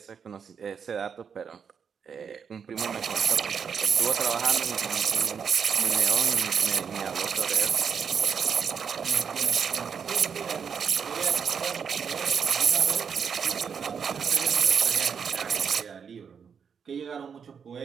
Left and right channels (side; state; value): left; quieter; 6.8 dB